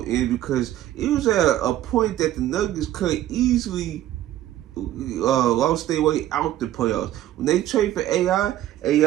to end because it was at a point that the Nuggets could easily lost their way out the playoffs. When they trade for AI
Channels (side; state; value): left; quieter; 13.2 dB